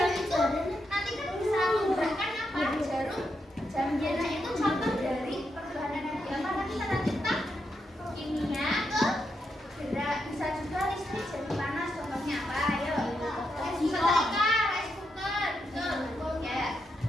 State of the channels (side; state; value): both; normal; correlation 0.83